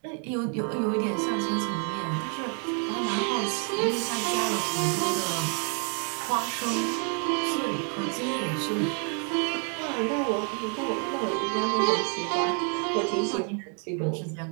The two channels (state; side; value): quieter; left; 39.2 dB